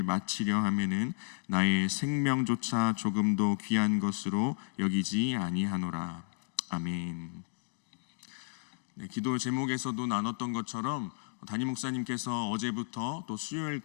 마치려 하면은 나의 생명조차 조금도 귀한 것으로 여기지 아니하노라. 아멘. 기도 제목에서도 나눴던 것처럼 담임 목사님께서 어제부터 또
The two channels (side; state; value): right; silent; digital silence